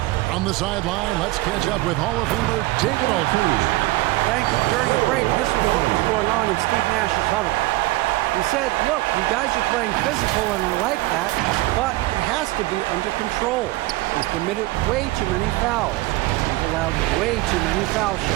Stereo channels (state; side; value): quieter; left; 19.5 dB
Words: On the sideline, let's catch up with Hall of Famer David Aldridge. Thanks. During the break, this was what was going on in Steve Nash's huddle. He said, look, you guys are playing physical and I like that, but it has to be under control. We've committed way too many fouls. We've allowed way too many foul